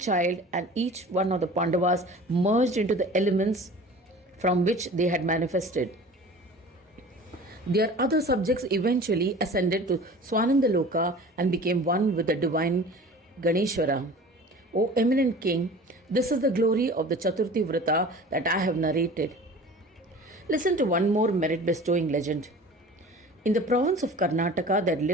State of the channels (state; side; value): normal; both; correlation 0.41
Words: and each one of the Pandavas merged into the elements from which they had manifested. Their other subjects eventually ascended to Swananda Loka and became one with the divine Ganeshwara. O eminent king, this is the glory of the Chaturthi Vrata that I have narrated. Listen to one more merit-bestowing legend. In the province of Karnataka, there